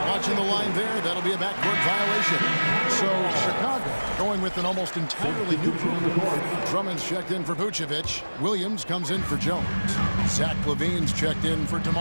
watching the line there. That'll be a backcourt violation. So Chicago going with an almost entirely new group. Drummond's checked in for Vucevic. Williams comes in for Jones. Zach LaVine's checked in for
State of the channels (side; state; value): both; inverted; correlation -1.00